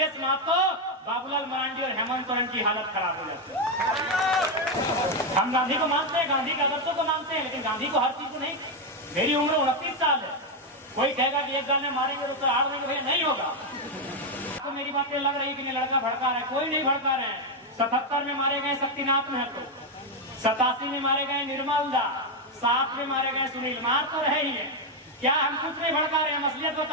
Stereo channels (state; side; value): normal; both; correlation 0.04